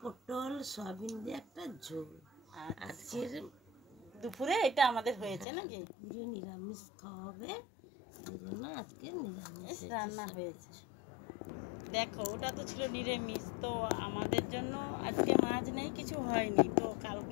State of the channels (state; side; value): drops out; right; at 5.5 s